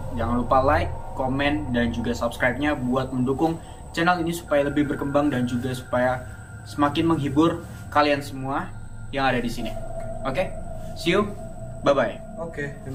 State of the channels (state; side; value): identical; both; correlation 1.00